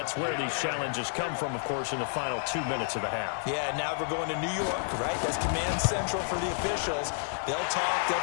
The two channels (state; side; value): silent; right; 55 dB below the other